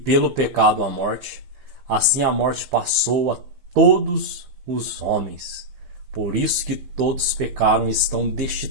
pecado a morte, assim a morte passou a todos os homens. Por isso que todos pecaram e estão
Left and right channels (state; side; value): late; left; 15 ms